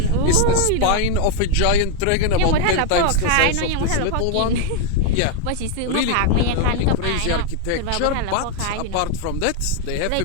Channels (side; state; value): both; different; correlation 0.01